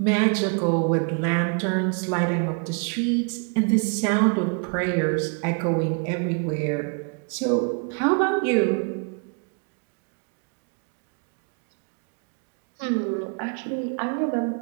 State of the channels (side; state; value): left; quieter; 38.0 dB